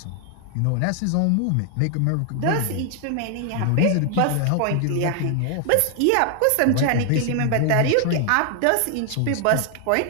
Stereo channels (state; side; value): different; both; correlation 0.00